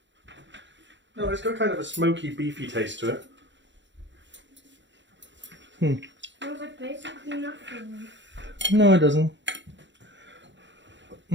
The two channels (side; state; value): left; late; 0.53 ms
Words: No, it's got kind of a smoky, beefy taste to it. Smells like basically nothing. No, it doesn't.